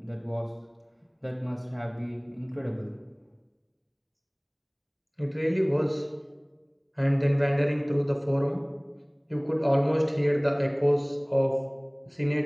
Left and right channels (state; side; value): identical; both; correlation 1.00